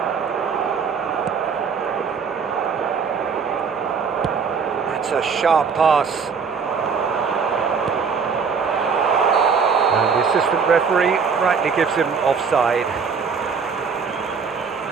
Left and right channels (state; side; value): quieter; left; 5.8 dB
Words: That's a sharp pass. And the assistant referee rightly gives him offside.